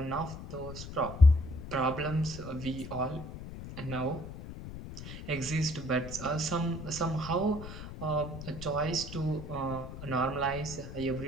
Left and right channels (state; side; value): noise; left; rumble, 11 dB below the sound